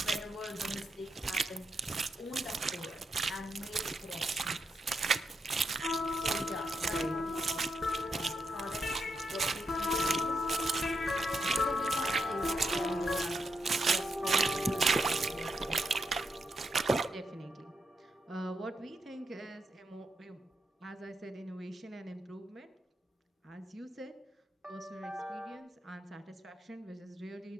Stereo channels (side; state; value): both; normal; correlation 0.82